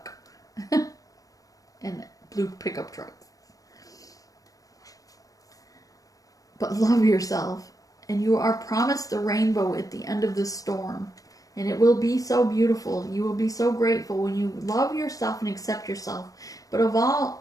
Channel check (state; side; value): late; right; 0.17 ms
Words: And blue pickup trucks. But love yourself. And you are promised the rainbow at the end of the storm. And it will be so beautiful. You will be so grateful when you love yourself and accept yourself. But of